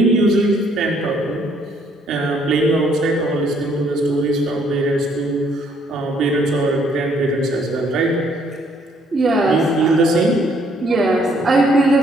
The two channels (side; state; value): both; normal; correlation 0.66